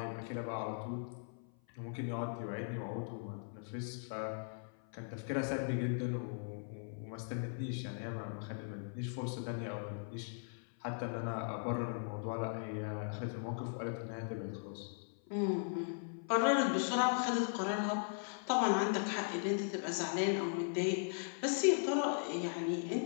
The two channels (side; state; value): right; silent; 52 dB below the other